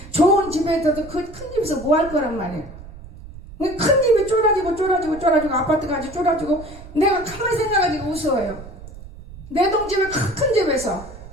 좋은 집에 있어도 그 큰 집에서 뭐 할 거란 말이에요. 큰 집이 쫄아지고 아파트까지 쫄아지고 내가 가만히 생각하니까 웃어요. 내 동집에 큰 집에서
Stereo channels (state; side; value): noise; right; rumble, 16 dB below the sound